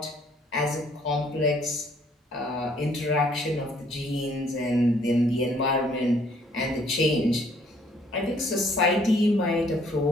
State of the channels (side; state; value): both; normal; correlation 0.63